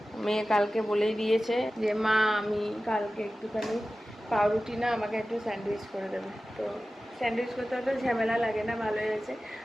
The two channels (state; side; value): normal; both; correlation 0.95